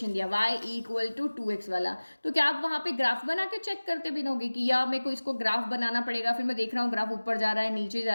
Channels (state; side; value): inverted; both; correlation -1.00